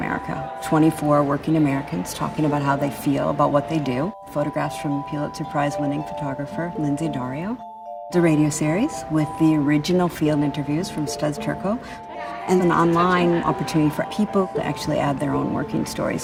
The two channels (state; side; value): identical; both; correlation 1.00